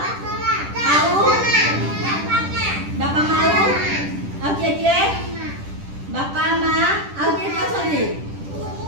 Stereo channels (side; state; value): left; late; 10 ms